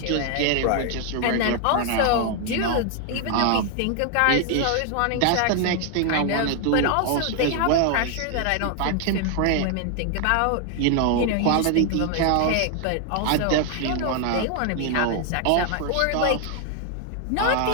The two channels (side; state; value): both; different; correlation 0.00